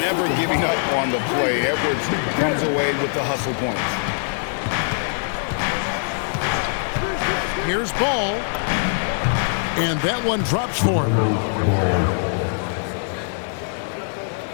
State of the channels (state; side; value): silent; right; 64 dB below the other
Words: Never giving up on the play. Edwards comes away with the hustle points. Here's Ball. And that one drops for him.